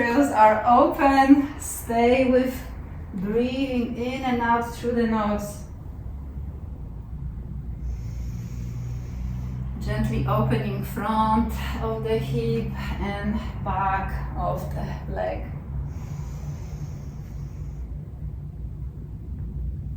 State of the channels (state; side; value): identical; both; correlation 1.00